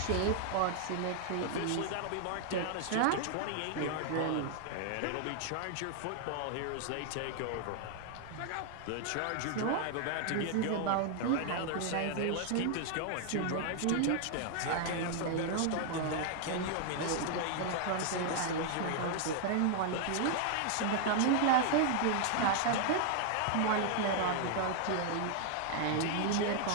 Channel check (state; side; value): different; both; correlation 0.00